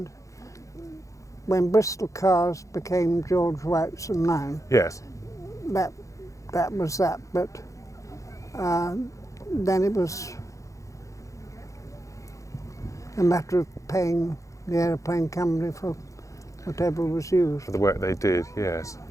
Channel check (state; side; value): late; right; 0.15 ms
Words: when Bristol Cars became George White's and mine. Yes. That was that, but then it was a matter of paying the aeroplane company for whatever was used. For the work they did, yes.